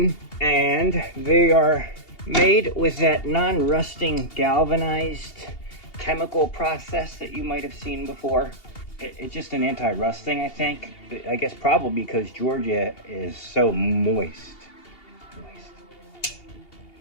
and they are made with that non-rusting galvanized chemical process that you might have seen before. It's just an anti-rust thing, I think. I guess probably because Georgia is so moist.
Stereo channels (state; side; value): late; right; 2.8 ms